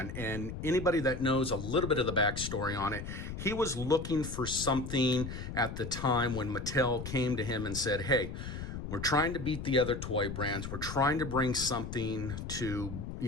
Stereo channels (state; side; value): noise; left; rumble, 7 dB below the sound